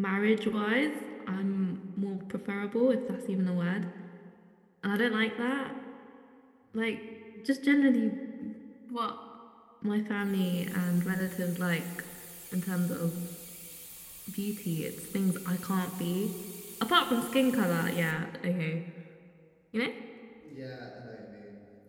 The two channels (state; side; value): identical; both; correlation 1.00